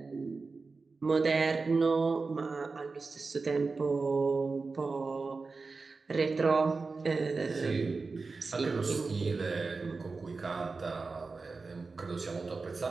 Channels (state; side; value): quieter; left; 4.1 dB